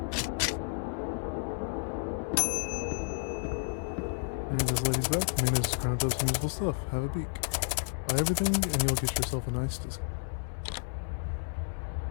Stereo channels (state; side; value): silent; right; 57 dB below the other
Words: And this lady's back. Main is ground up some useful stuff. Have a beak. Buy everything and you'll get yourself a nice discount.